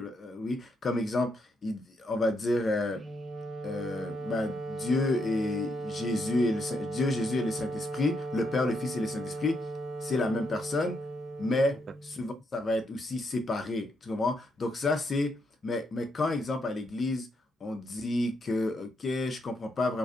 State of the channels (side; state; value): both; normal; correlation 0.78